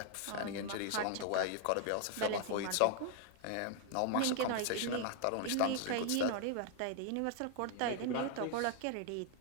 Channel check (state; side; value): different; both; correlation 0.00